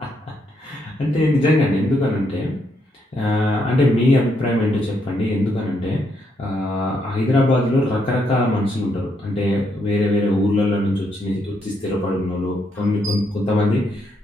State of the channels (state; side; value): normal; both; correlation 0.76